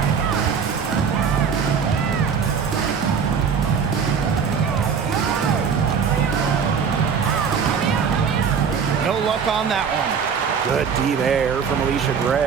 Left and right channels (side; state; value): left; quieter; 6.5 dB